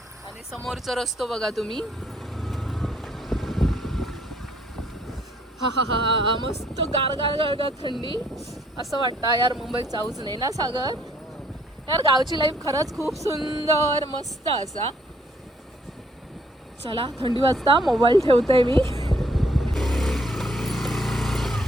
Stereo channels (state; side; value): normal; both; correlation 0.65